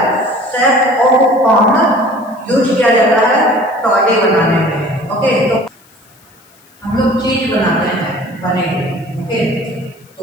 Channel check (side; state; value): left; noise; hiss, 30 dB below the sound